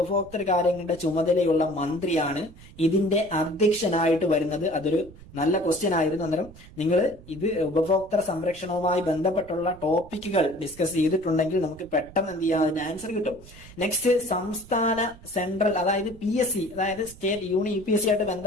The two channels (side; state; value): right; noise; rumble, 19 dB below the sound